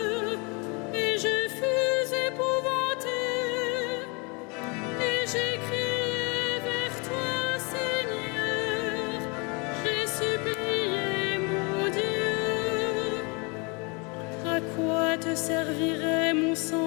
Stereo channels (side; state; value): right; quieter; 31.0 dB